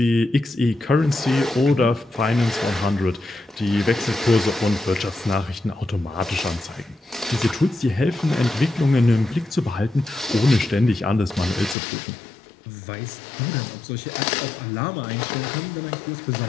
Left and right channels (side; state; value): right; drops out; at 11.8 s